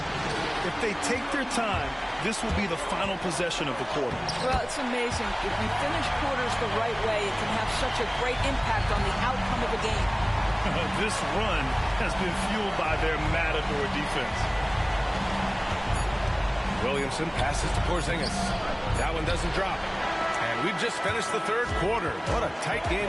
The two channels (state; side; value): identical; both; correlation 1.00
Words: If they take their time, this will be the final possession of the quarter. Well, it's amazing. If you finish quarters the right way, it can have such a great impact on the outcome of the game. This run has been fueled by their matador defense. Williamson passes to Porzingis. That one doesn't drop. And we've just finished the third quarter. What a tight